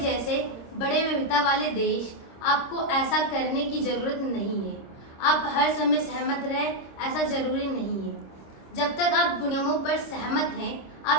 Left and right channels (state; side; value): late; right; 26 ms